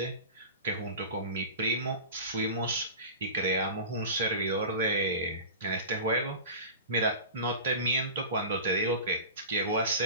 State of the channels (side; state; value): both; inverted; correlation -0.33